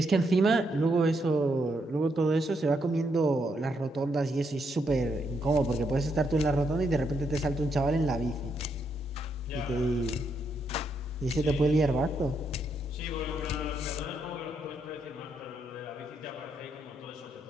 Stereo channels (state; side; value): normal; both; correlation 0.78